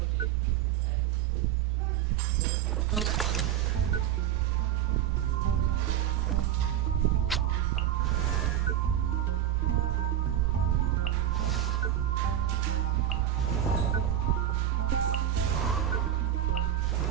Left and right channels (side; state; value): left; quieter; 11.1 dB